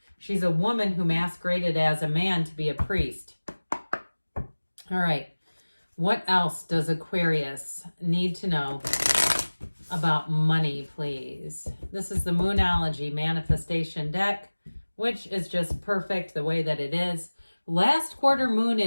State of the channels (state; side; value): inverted; both; correlation -1.00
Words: She's a woman who masqueraded as a man to be a priest. All right. What else does Aquarius need to know about money, please? This is the Moonology Manifestation deck, which is just perfect the way that it is. Last quarter moon